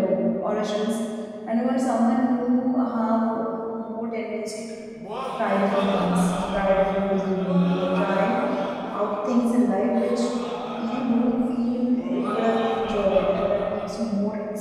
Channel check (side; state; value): both; identical; correlation 1.00